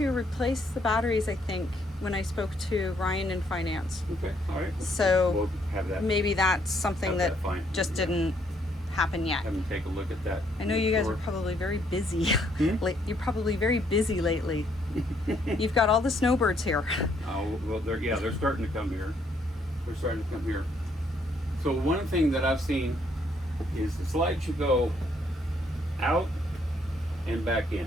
replace the batteries, I think, when I spoke to Ryan in finance. Okay. All right. So we'll have that. Maybe that's something Have that that fine. just Yeah. didn't happen yet. Have them take a look at that. I know you guys are Sure. probably very busy. Hmm? You're probably very busy lately. You've got all the snowbirds here. Oh, well, they're starting to come here. They're starting to come here. So one thing that I've seen is the slide should go out and back in.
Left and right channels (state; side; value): normal; both; correlation 0.70